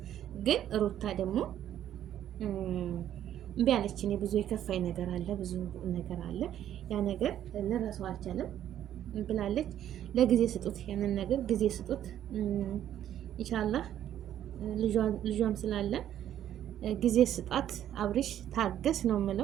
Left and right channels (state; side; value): quieter; left; 11.0 dB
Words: ግን ሩታ ደግሞ እምቢ አለች። እኔ ብዙ የከፋኝ ነገር አለ፣ ብዙ ነገር አለ፣ ያ ነገር ልረሳው አልቻለም ብላለች። ለጊዜ ስጡት፣ ያንን ነገር ጊዜ ስጡት። ኢንሻአላህ ልጇም ስላለ ጊዜ ስጣት። አብርሽ ታገስ ነው